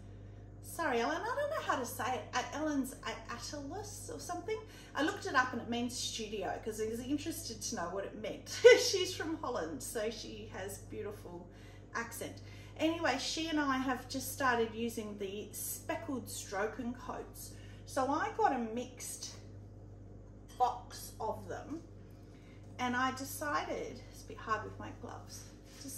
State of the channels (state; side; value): identical; both; correlation 1.00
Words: sorry Ellen, I don't know how to say it, Ellen's Atlas or something. I looked it up and it means studio because I was interested to know what it meant. She's from Holland, so she has beautiful accent. Anyway, she and I have just started using the speckled stroke and coats. So I got a mixed box of them, And I decided, it's a bit hard with my gloves,